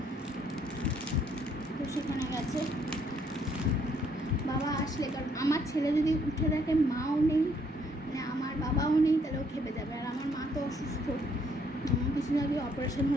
তো সেখানে গেছে। বাবা আসলে, কারণ আমার ছেলে যদি উঠে দেখে মাও নেই, মানে আমার বাবাও নেই, তাহলে ও খেপে যাবে। আর আমার মা তো অসুস্থ, কিছুদিন আগে অপারেশন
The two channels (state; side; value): normal; both; correlation 0.68